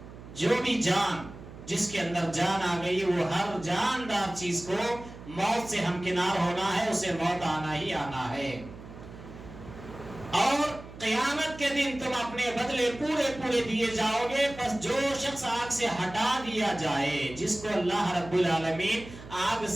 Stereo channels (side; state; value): right; noise; hum, 15 dB below the sound